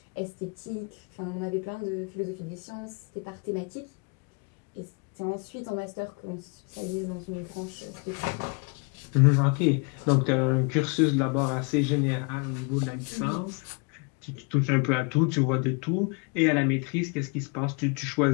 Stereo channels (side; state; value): right; quieter; 33.8 dB